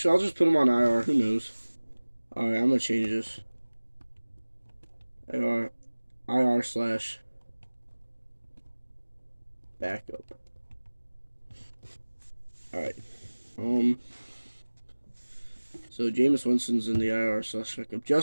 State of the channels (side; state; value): both; inverted; correlation -1.00